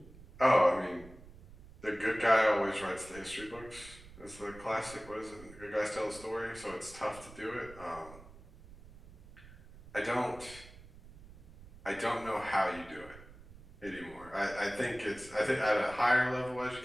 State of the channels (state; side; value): noise; right; rumble, 19 dB below the sound